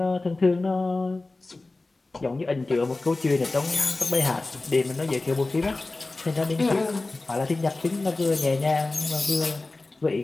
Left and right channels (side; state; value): right; quieter; 3.2 dB